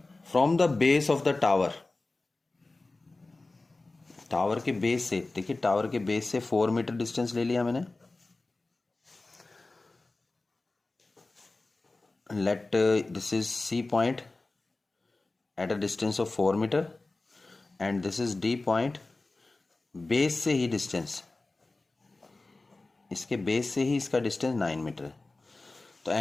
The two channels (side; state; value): right; quieter; 3.2 dB